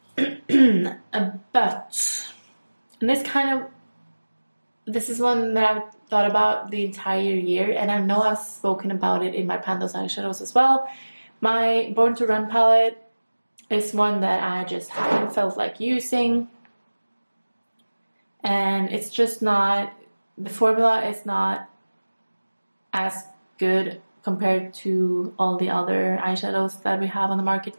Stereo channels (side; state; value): both; inverted; correlation -1.00